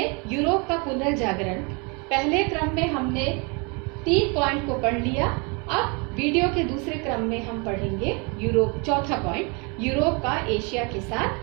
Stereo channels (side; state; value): left; quieter; 31.9 dB